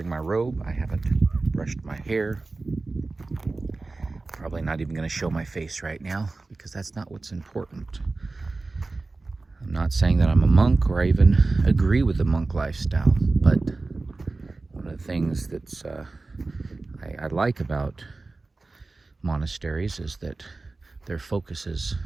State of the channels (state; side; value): quieter; left; 3.5 dB